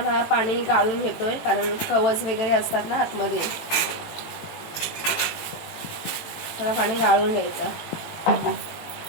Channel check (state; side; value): late; right; 18 ms